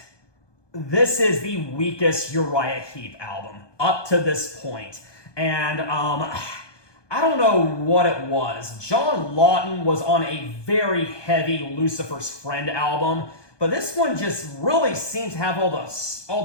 this is the weakest Uriah Heep album. Up to this point. And I don't know what it was. John Lawton was on a very heavy Lucifer's Friend album, but this one just really seems to have the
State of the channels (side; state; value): right; late; 1.2 ms